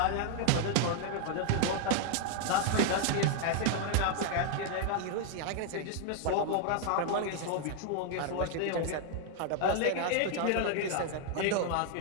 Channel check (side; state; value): both; different; correlation 0.00